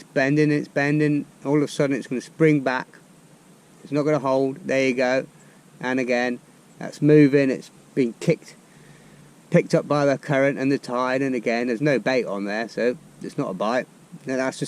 bending. It's bending. All of a sudden, it's going to spring back. It's not going to hold. There you go. And again, that's moving. It's being picked up by the current and the tide. And again, there's no bait on there, so it's not a bite. Now that's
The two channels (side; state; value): both; identical; correlation 1.00